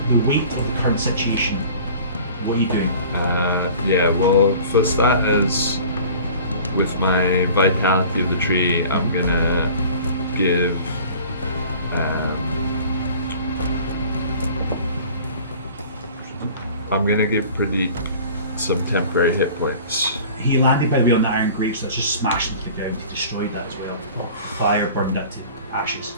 weight of the current situation. What are you doing? Yeah, well, for starters, with my vitality of the tree, I'm gonna give. I'm gonna give Pradeep some temporary hit points. He landed, by the way, on the iron grate, so it's just smashed into the ground. He destroyed that as well. Fire burned it to ashes.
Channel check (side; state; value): both; inverted; correlation -0.45